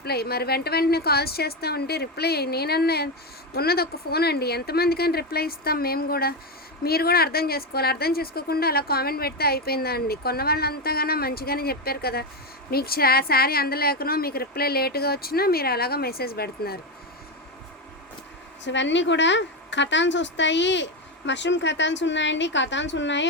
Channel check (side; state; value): both; normal; correlation 0.11